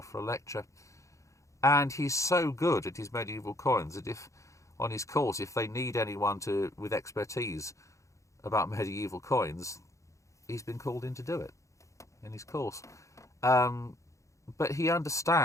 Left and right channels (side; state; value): right; late; 0.15 ms